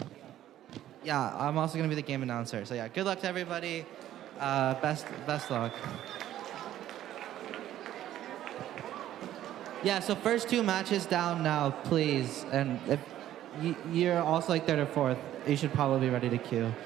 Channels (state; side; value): quieter; left; 12.6 dB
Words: Yeah, I'm also gonna be the game announcer. So yeah, good luck to everybody. Best luck. Yeah, so first two matches down now, please. And if you're also like third or fourth, you should probably be ready to queue.